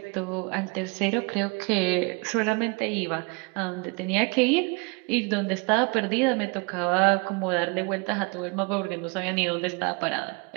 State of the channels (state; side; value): quieter; left; 30.9 dB